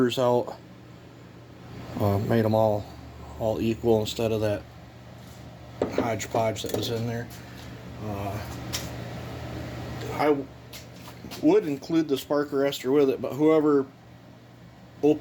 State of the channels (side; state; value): both; identical; correlation 1.00